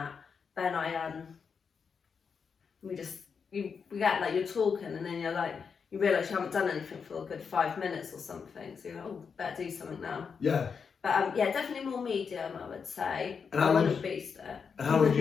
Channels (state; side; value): quieter; right; 6.0 dB